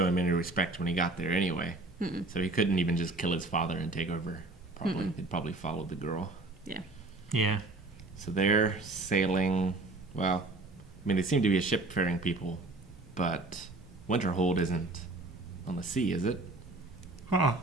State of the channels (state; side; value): quieter; left; 3.0 dB